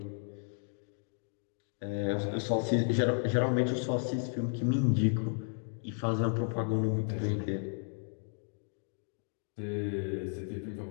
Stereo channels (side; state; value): right; silent; 55 dB below the other